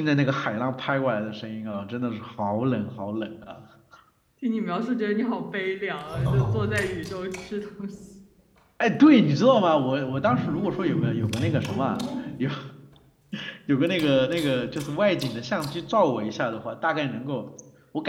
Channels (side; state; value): both; identical; correlation 1.00